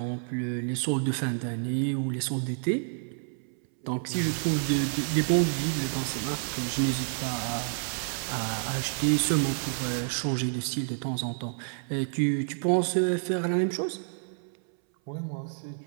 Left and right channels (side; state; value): left; silent; 58 dB below the other